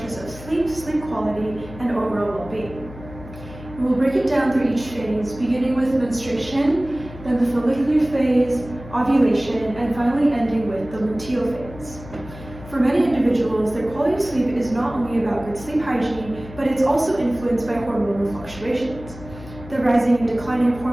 of sleep, sleep quality, and overall well-being. We'll break it down through each phase, beginning with menstruation, then the follicular phase, ovulation, and finally ending with the luteal phase. For many individuals, their quality of sleep is not only about good sleep hygiene, but it's also influenced by hormonal fluctuations. The rising and declining of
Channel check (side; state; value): left; noise; hum, 15 dB below the sound